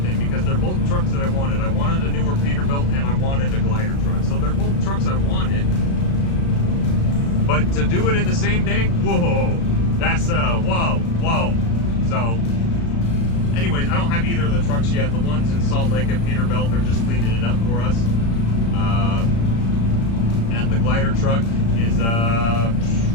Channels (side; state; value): right; late; 35 ms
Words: thing, because they're both trucks that I wanted. I wanted a newer Peterbilt and I wanted a glider truck. So they're both trucks I wanted. But to do it in the same day, whoa, that's whoa. So anyways, I don't have either of the trucks yet. The ones in Salt Lake and Peterbilt, they're just cleaning it up for us. And the glider truck is